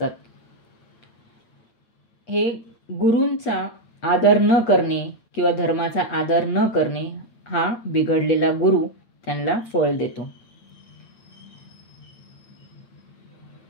हे गुरूंचा आदर न करणे किंवा धर्माचा आदर न करणे हा बिघडलेला गुरु त्यांना फळ देतो.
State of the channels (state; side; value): late; right; 8.5 ms